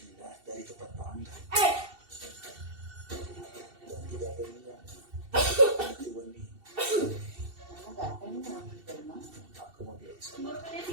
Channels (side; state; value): left; late; 2.7 ms